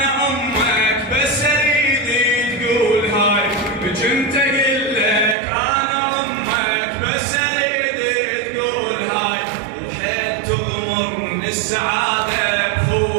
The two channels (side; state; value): left; drops out; at 5.4 s